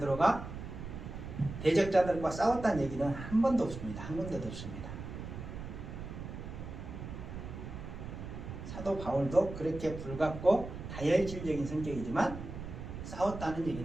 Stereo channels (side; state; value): right; noise; rumble, 9 dB below the sound